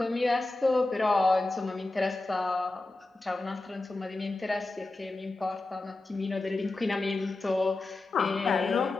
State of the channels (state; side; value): quieter; right; 3.0 dB